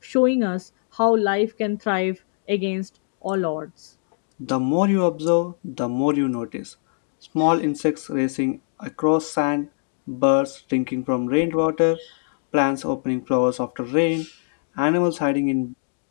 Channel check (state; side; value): silent; right; digital silence